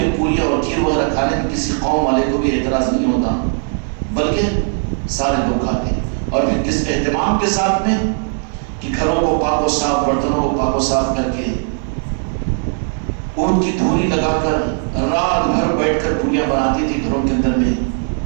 پوری اور کھیر وغیرہ کھانے میں کسی قوم والے کو بھی اعتراض نہیں ہوتا، بلکہ سارے لوگ کھاتے ہیں۔ اور پھر کس اہتمام کے ساتھ میں کہ گھروں کو پاک و صاف، برتنوں کو پاک و صاف کر کے ان کی دھوری لگا کر رات بھر بیٹھ کر پوریاں بناتی تھی گھروں کے اندر میں،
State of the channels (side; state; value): left; silent; 56 dB below the other